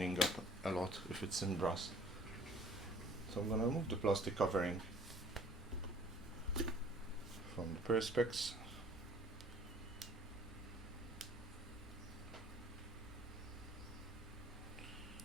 up a lot if it's in brass. So I'm gonna remove the plastic covering from the Perspex.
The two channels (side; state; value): both; normal; correlation 0.53